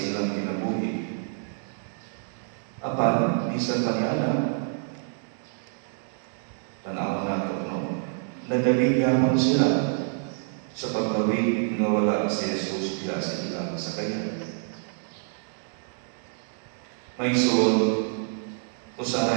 ilang kinabuhi. Apan, bisan pa niya tanaw na ito, no? Nagaligyaman sila sa paglawig nga wala si Jesus niya sa ilang sakayan. May soul,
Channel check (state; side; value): silent; left; digital silence